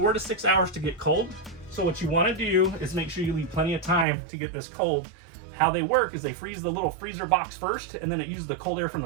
to 6 hours to get cold. So what you wanna do is make sure you leave plenty of time to get this cold. How they work is they freeze the little freezer box first, and then it uses the cold air from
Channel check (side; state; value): left; drops out; at 4.0 s